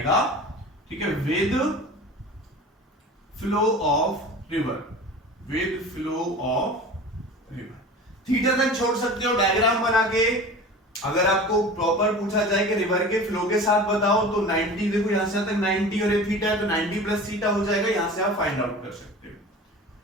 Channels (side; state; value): both; normal; correlation 0.37